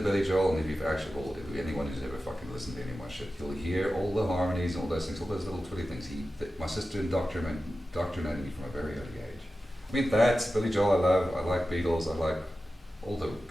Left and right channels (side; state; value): both; normal; correlation 0.93